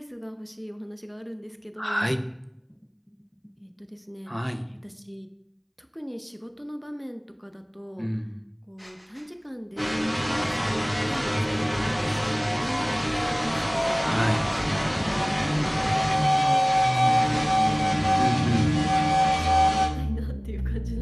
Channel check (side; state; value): both; identical; correlation 1.00